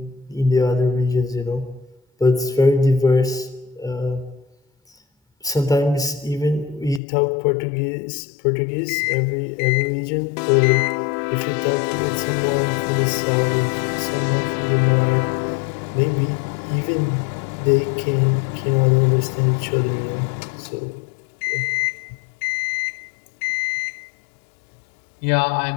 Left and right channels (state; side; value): drops out; right; at 7.0 s